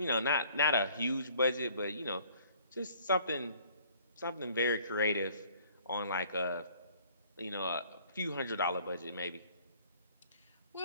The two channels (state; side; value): inverted; both; correlation -0.56